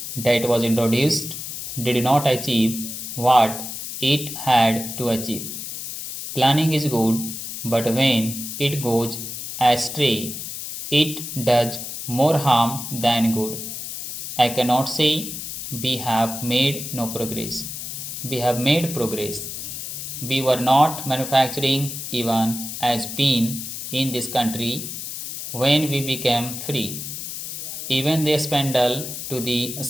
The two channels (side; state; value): left; noise; hiss, 7 dB below the sound